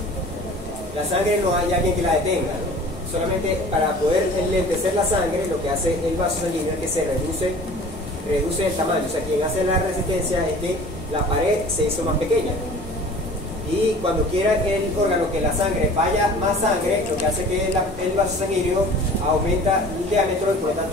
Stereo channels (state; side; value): normal; both; correlation 0.45